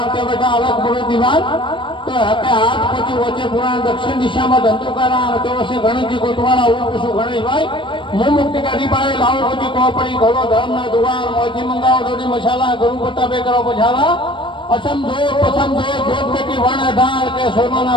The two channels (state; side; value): late; right; 0.24 ms